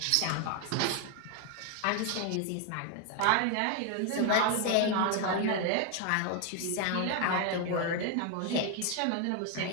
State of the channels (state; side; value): different; both; correlation 0.01